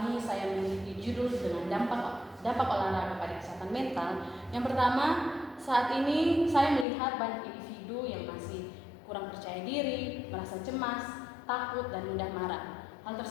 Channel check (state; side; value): drops out; right; at 6.9 s